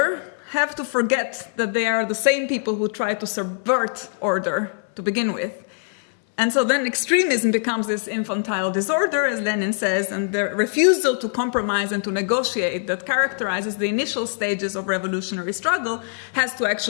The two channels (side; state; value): right; silent; digital silence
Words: have to forget that they are the same people who try to subvert order to begin with. And so then extremism becomes this infantile disorder, as Lenin says, and the refusal to compromise and to negotiate that characterizes the initial stages of revolutionary struggle has to